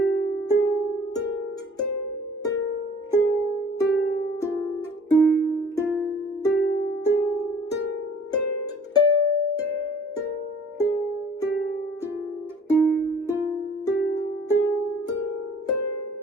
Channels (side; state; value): both; normal; correlation 0.51